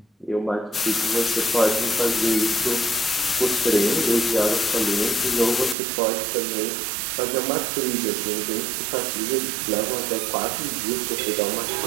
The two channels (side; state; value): left; drops out; at 5.8 s